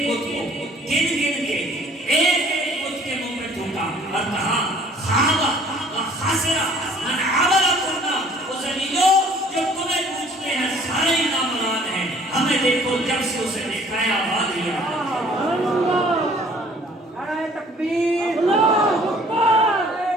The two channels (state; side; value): normal; both; correlation 0.55